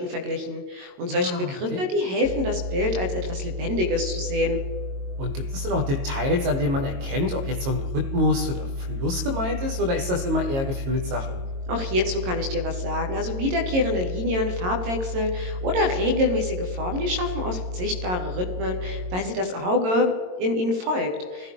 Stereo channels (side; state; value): left; late; 22 ms